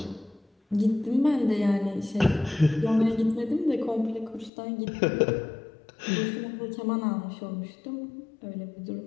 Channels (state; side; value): drops out; right; at 4.5 s